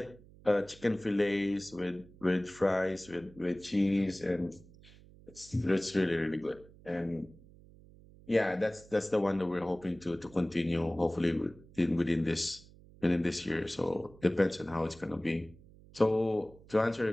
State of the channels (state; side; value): noise; right; hum, 23 dB below the sound